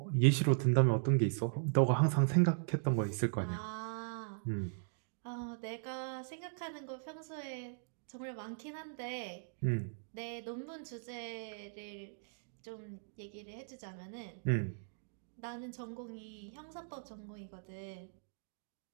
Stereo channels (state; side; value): silent; left; digital silence